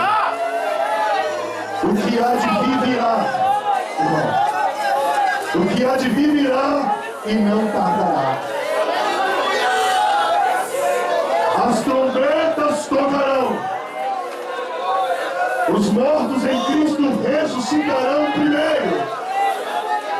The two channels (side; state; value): both; identical; correlation 1.00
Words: o que há de vir virá. O que há de vir virá e não tardará. As trombetas tocarão. Os mortos em Cristo ressuscitarão primeiro.